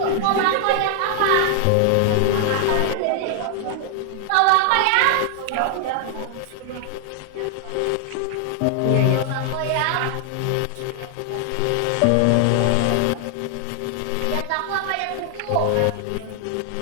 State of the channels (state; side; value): different; both; correlation 0.00